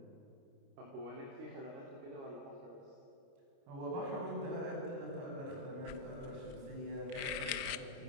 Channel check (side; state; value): left; late; 29 ms